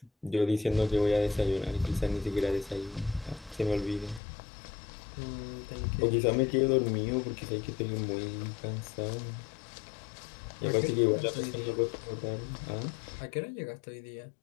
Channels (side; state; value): right; drops out; at 4.2 s